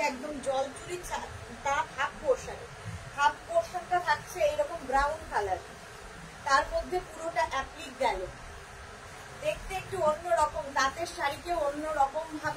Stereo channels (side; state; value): both; identical; correlation 1.00